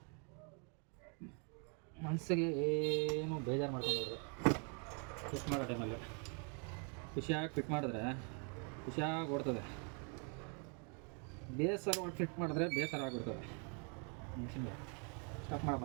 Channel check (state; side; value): quieter; left; 38.1 dB